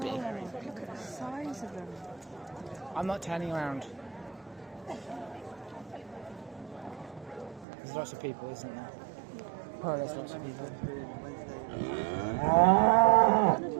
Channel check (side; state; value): left; drops out; at 7.7 s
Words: Look at the size of them. I'm not turning around. There's lots of people, isn't there? Oh, there's lots of people.